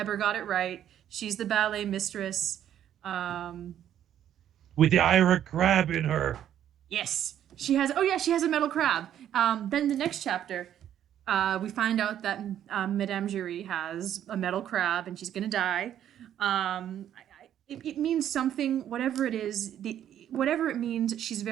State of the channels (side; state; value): left; quieter; 10.6 dB